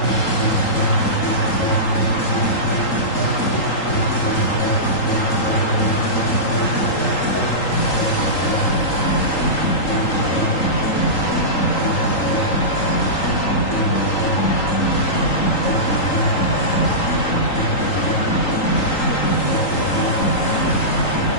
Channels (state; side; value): late; right; 3.8 ms